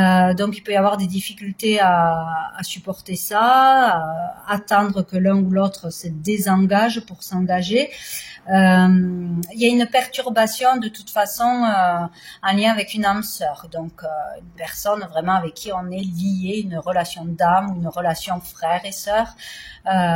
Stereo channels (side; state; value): both; identical; correlation 1.00